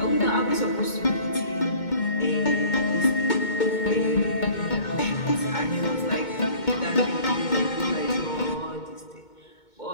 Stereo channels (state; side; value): late; right; 2.2 ms